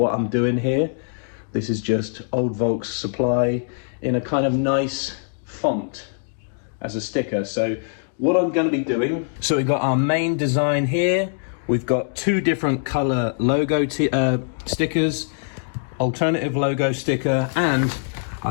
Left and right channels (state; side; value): silent; right; digital silence